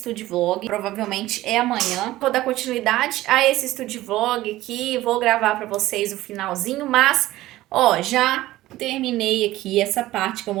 Vlog. Provavelmente é amanhã. Vou dar continuidade a esse Estúdio Vlog aqui. Vou gravar pra vocês o finalzinho. Mas, ó, já terminei aqui essa parte que eu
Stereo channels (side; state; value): left; quieter; 16.4 dB